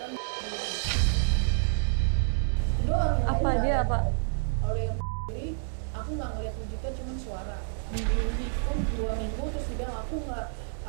Itu doang, yang lain Apa nggak ada dia, yang Pak? ngomong. Kalau yang sendiri, aku nggak ngeliat wujudnya, cuman suara. Di mimpiku 2 minggu terus dia bilang aku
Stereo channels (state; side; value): silent; left; 58 dB below the other